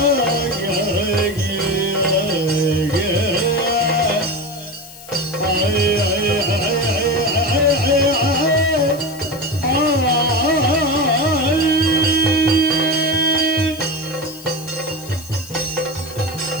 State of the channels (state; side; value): noise; left; hiss, 18 dB below the sound